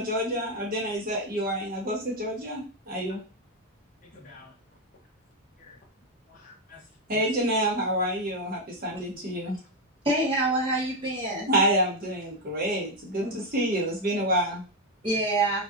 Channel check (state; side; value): normal; both; correlation 0.06